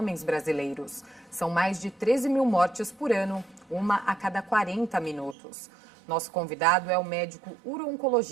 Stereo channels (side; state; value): left; drops out; at 5.4 s